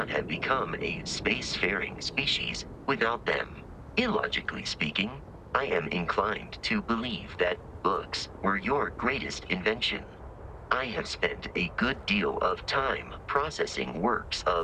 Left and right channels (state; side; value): identical; both; correlation 1.00